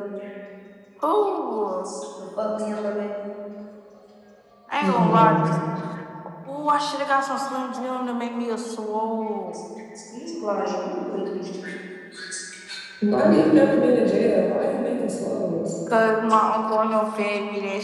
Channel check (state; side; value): identical; both; correlation 1.00